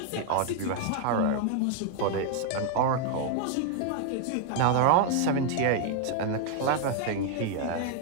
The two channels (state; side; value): different; both; correlation 0.00